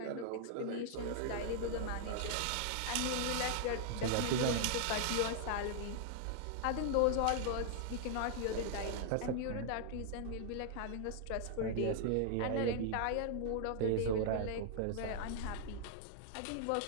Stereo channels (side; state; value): both; different; correlation -0.01